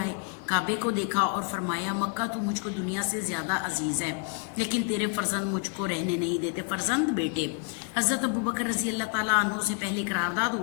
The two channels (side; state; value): right; quieter; 37.2 dB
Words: کعبے کو دیکھا اور فرمایا، مکہ تو مجھ کو دنیا سے زیادہ عزیز ہے، لیکن تیرے فرزند مجھ کو رہنے نہیں دیتے۔ فرزند بیٹے حضرت ابو بکر رضی اللہ تعالیٰ عنہ سے پہلے قرارداد